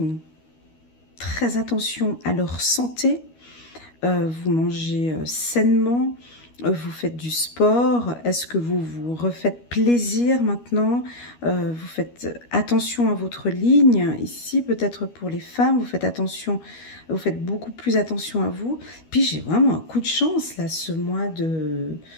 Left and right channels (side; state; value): right; late; 12 ms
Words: très attention à leur santé. Vous mangez sainement, vous faites du sport, est-ce que vous vous refaites plaisir maintenant, vous faites attention à votre ligne, ici peut-être pour les femmes, vous faites attention, vous faites beaucoup plus attention à vous, puis j'ai vraiment un coup de chance là, ce mois de